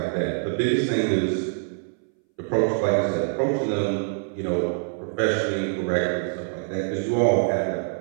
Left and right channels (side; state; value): left; silent; 61 dB below the other